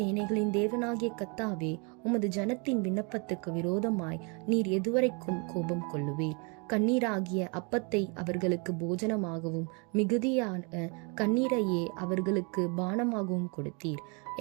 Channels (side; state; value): left; quieter; 33.6 dB